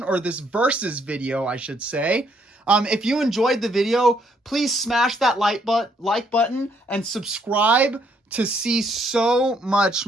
or this versus video, I should say. If you enjoyed the video, please smash that like button and subscribe to see so much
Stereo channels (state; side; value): normal; both; correlation 0.70